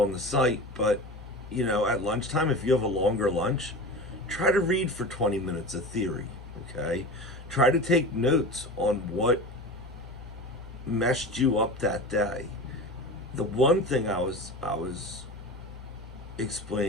the site, but at lunchtime, if you have a longer lunch, try to read for 20 minutes of theory, okay? Try to take notes on what messed you up that day. The one thing I was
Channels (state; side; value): normal; both; correlation 0.30